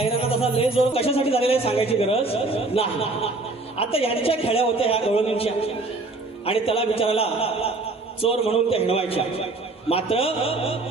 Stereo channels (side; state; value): left; quieter; 3.2 dB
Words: तसा लय जोर कशासाठी झालेला आहे सांगायची गरज नाही. आता यांच्या खेळ्या होत्या ह्या गवळणींच्या आणि त्याला विचारायला चोर म्हणून त्या हिणवायच्या. मात्र